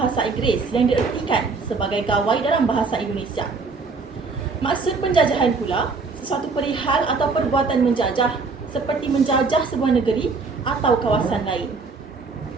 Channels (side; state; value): left; quieter; 4.3 dB